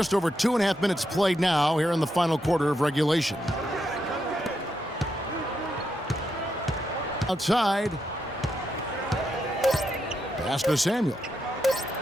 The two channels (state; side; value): normal; both; correlation 0.82